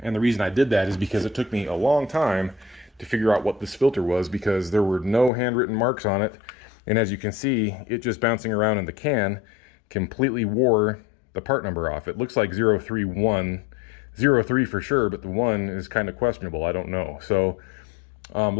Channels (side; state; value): right; drops out; at 5.3 s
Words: And the reason I did that is because it took me a long time to figure out what this filter was, because there were no handwritten marks on it. And as you can see, it just bouncing around in the can completely wore the part number off. It looks like 031, 03 for sure, but the 1 is kind of questionable. I don't know. So